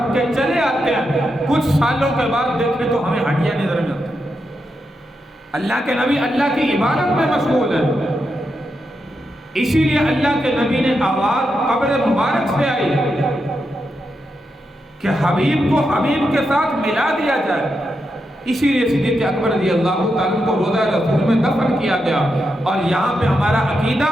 کے چلے آتے ہیں، کچھ سالوں کے بعد دیکھیں تو ہمیں ہڈیاں نظر میں آتی ہیں۔ اللہ کے نبی اللہ کی عبادت میں مشغول ہے، اسی لیے اللہ کے نبی نے آواز قبر مبارک سے آئی کہ حبیب کو حبیب کے ساتھ ملا دیا جائے۔ اسی لیے صدیق اکبر رضی اللہ تعالیٰ کو روضہ رسول میں دفن کیا گیا. اور یہاں پہ ہمارا عقیدہ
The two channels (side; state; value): both; normal; correlation 0.85